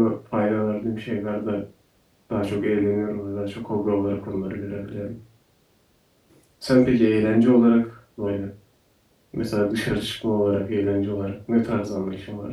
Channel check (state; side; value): identical; both; correlation 1.00